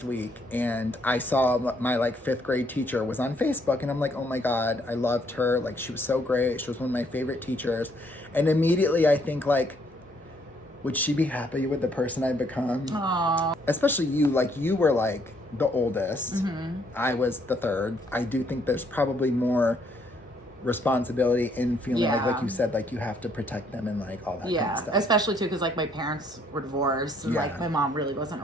week, and I saw my like 5th grade teacher was on Facebook, and I'm like, oh my God, I loved her. Like she was so great. She was one of my favorite teachers. And immediately I think like, would she be happy with the person I've become? Aww. Especially you, like you were like the oldest. I was the 3rd. I do think there's probably more responsibility in feeling like you said, like you have to protect them and like all that kind of stuff. Especially too because like my parents were divorced and like my mom really wasn't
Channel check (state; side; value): normal; both; correlation 0.68